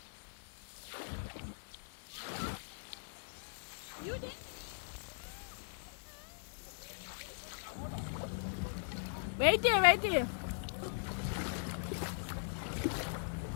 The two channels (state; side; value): silent; right; digital silence